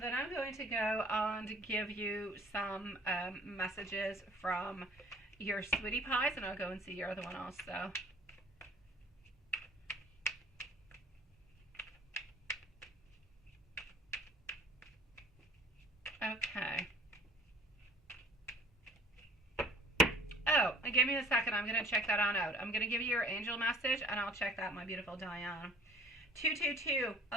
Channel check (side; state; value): both; normal; correlation 0.52